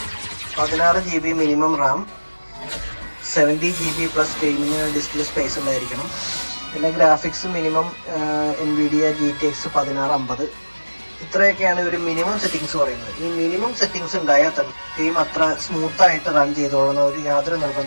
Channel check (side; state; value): both; inverted; correlation -1.00